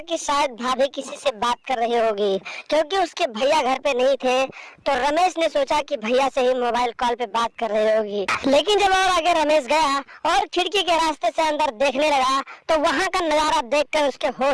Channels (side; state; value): both; identical; correlation 1.00